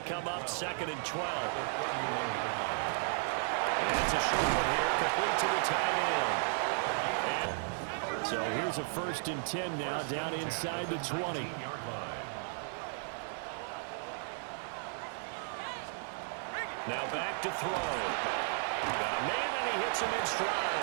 come up 2nd and 12. And it's a short one here, complete to the tight end. And so here's a 1st and 10 now, down inside the 20. Now back to throw. Got a man, and he hits him in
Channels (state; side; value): silent; left; 55 dB below the other